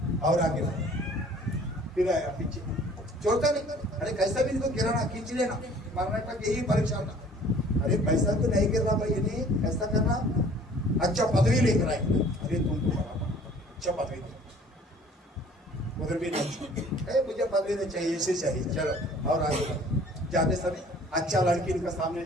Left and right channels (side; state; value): both; normal; correlation 0.52